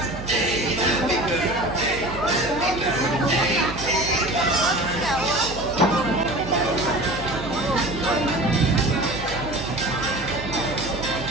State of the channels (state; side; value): noise; right; hum, 11 dB below the sound